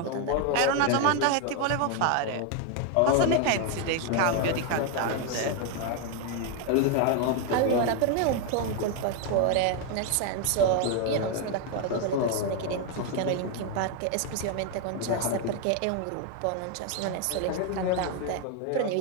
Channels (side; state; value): both; different; correlation 0.01